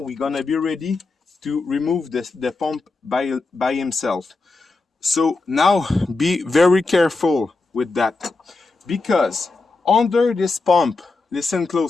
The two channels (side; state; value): right; quieter; 3.6 dB